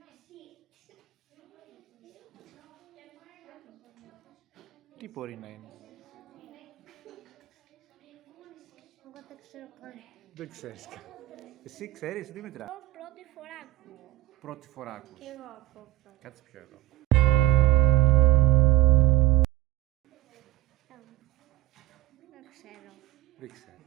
Τι μπορεί να είναι? Εγώ δεν ξέρω καν. Δεν ξέρεις. Εσύ ξέρεις, Δήμητρα? Εγώ πρώτη φορά ακούω. Πρώτη φορά ακούς. Και εγώ ακούω πρώτη. Κάτσε πιο εδώ. Δεν ξέρω. Δεν ξέρω.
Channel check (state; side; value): quieter; left; 15.6 dB